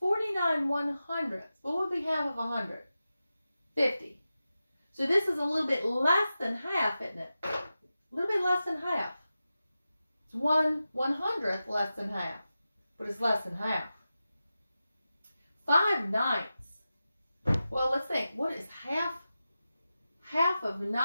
49 100ths, what would be half of 100? 50. So this is a little bit less than half, isn't it? A little bit less than half. It's 1/100th less than half, but it's less than half. 5/9. Well, let's think. What is half? Half of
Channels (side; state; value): both; inverted; correlation -0.93